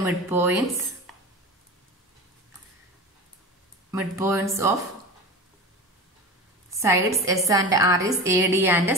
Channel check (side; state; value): both; normal; correlation 0.30